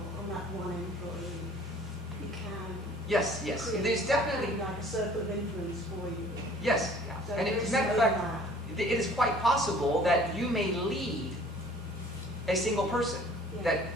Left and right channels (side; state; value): both; normal; correlation 0.52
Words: on that one employee. You can. Yes. There's definitely like a circle of influence for you. Yes. Yeah. So And as a matter of fact, it is quite possible that you may lead a single person. Yeah.